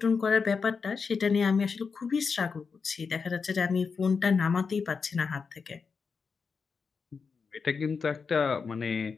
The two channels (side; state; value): right; quieter; 5.3 dB